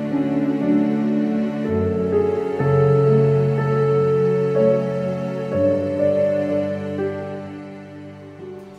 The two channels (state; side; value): identical; both; correlation 1.00